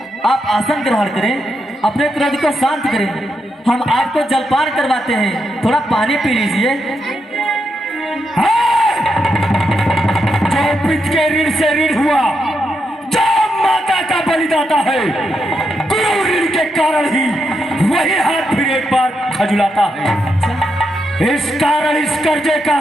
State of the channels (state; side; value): normal; both; correlation 0.83